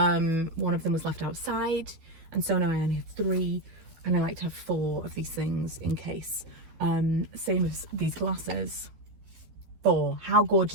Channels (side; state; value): left; late; 12 ms